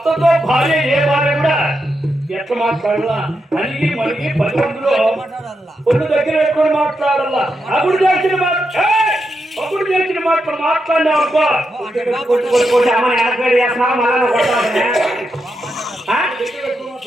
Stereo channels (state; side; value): normal; both; correlation 0.85